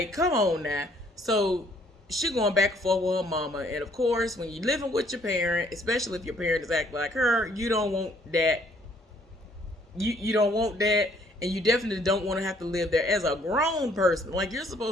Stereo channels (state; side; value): normal; both; correlation 0.63